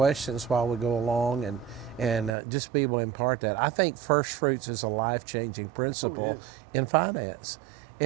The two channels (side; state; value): left; drops out; at 2.3 s